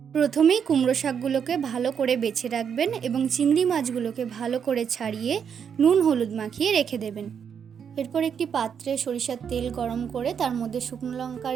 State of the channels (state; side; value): quieter; left; 7.5 dB